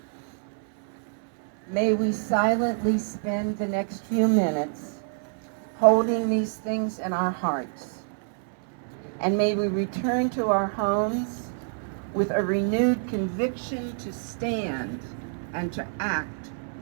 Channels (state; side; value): silent; left; 57 dB below the other